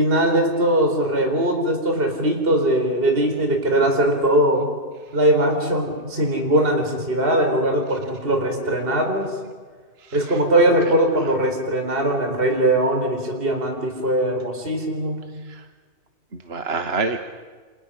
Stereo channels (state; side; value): late; left; 2.7 ms